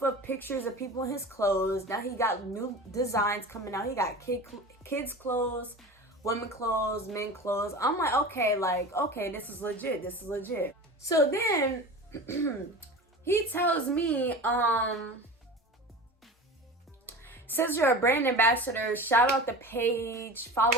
of pictures of people in his clothes. Now he got new designs coming out. He got kids' clothes, women clothes, men clothes. I'm like, okay, this is legit. This is legit. So, then he tells me, since you're a brand ambassador, shout out the page,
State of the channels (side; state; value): both; normal; correlation 0.33